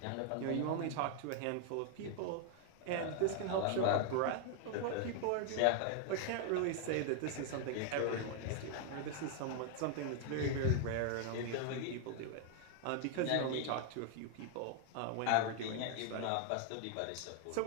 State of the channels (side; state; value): both; different; correlation 0.00